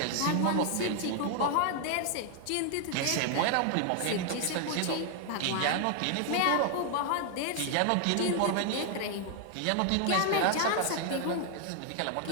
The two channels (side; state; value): both; different; correlation 0.00